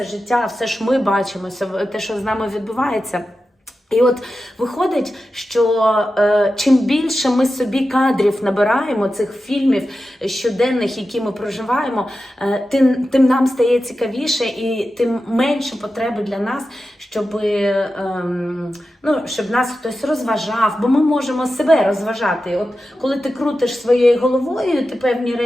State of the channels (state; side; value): normal; both; correlation 0.92